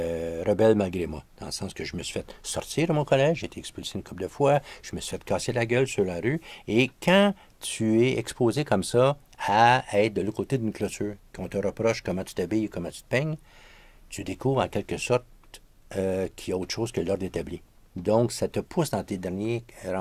rebelle malgré moi. Dans le sens que je me suis fait sortir de mon collège, j'ai été expulsé une couple de fois, je me suis fait casser la gueule sur la rue. Et quand tu es exposé comme ça à être de l'autre côté d'une clôture, qu'on te reproche comment tu t'habilles, comment tu te peignes, tu découvres en quelque sorte qu'il y a autre chose que l'ordre établi. Donc, ça te pousse dans tes derniers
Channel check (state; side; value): identical; both; correlation 1.00